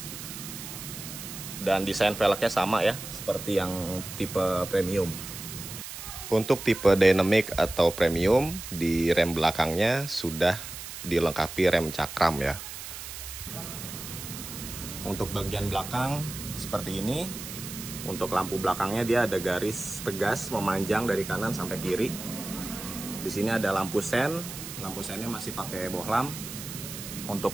Dan desain velgnya sama ya, seperti yang tipe Premium. Untuk tipe Dynamic atau Premium, di rem belakangnya sudah dilengkapi rem cakram ya. Untuk bagian belakang seperti ini. Untuk lampu belakangnya dia ada garis tegas memanjang dari kanan sampai kiri. Di sini ada lampu sen. Lampu sennya masih pakai bohlam. Untuk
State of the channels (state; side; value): noise; right; hiss, 10 dB below the sound